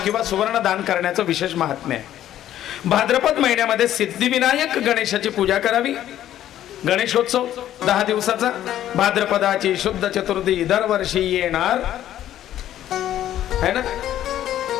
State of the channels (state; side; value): quieter; right; 12.0 dB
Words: किंवा सुवर्ण दान करण्याचं विशेष महात्म्य आहे. भाद्रपद महिन्यामध्ये सिद्धिविनायक गणेशाची पूजा करावी. गणेशोत्सव 10 दिवसाचा. भाद्रपदाची शुद्ध चतुर्थी दरवर्षी येणार है ना.